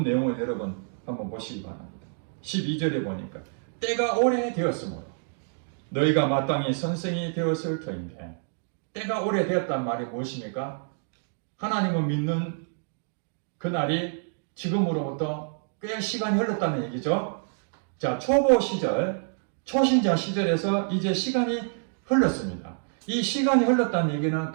내용을 여러분 한번 보시기 바랍니다. 12절에 보니까 때가 오래되었으므로 너희가 마땅히 선생이 되었을 터인데, 때가 오래되었단 말이 무엇입니까? 하나님을 믿는 그날이 지금으로부터 꽤 시간이 흘렀다는 얘기죠. 자, 초보 시절, 초신자 시절에서 이제 시간이 흘렀습니다. 이 시간이 흘렀다는 얘기는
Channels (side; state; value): left; silent; digital silence